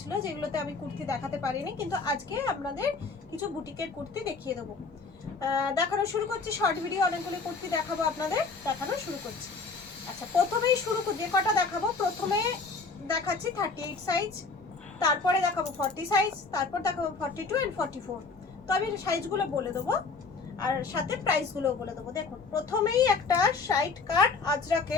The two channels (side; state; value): right; quieter; 4.4 dB